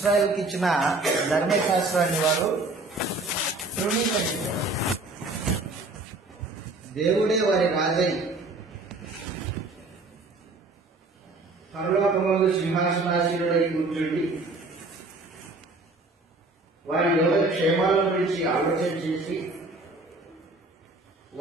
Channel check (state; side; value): quieter; left; 3.1 dB